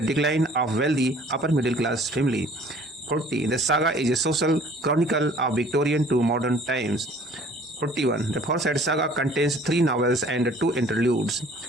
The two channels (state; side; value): normal; both; correlation 0.53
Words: decline of wealthy upper middle class family. 40. The saga is a social chronicle of Victorian to modern times. 41. The Forsyte Saga contains 3 novels and 2 interludes.